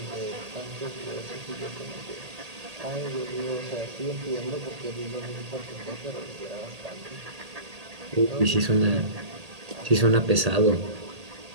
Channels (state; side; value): late; left; 1.8 ms